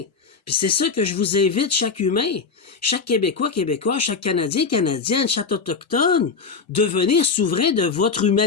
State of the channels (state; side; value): quieter; right; 5.1 dB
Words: Puis c'est ça que je vous invite, chaque humain, chaque Québécois, chaque Canadien, Canadienne, chaque Autochtone, devenir souverain de votre